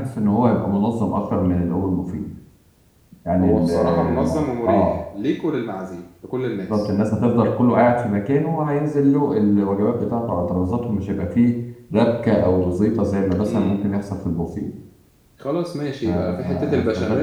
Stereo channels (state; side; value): identical; both; correlation 1.00